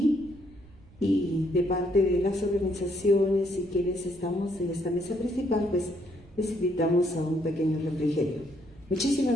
y de parte de las organizaciones y quienes estamos en esta mesa principal, pues les invitamos a un pequeño refrigerio.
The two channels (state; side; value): noise; right; rumble, 24 dB below the sound